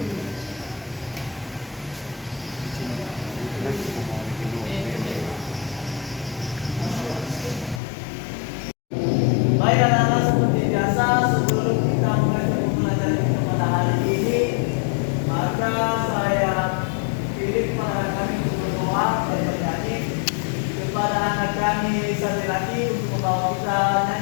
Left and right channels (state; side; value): drops out; right; at 7.8 s